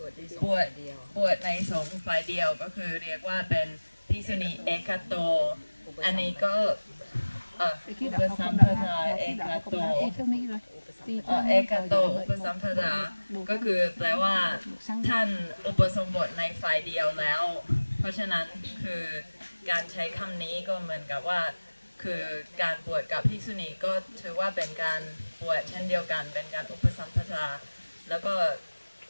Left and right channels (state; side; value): inverted; both; correlation -1.00